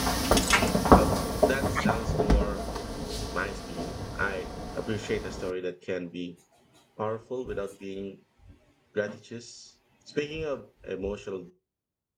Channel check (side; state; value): both; identical; correlation 1.00